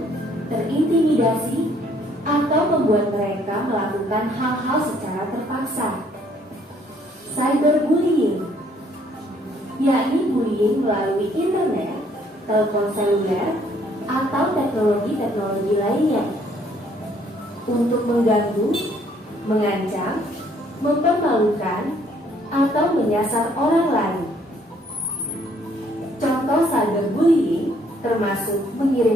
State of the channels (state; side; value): normal; both; correlation 0.64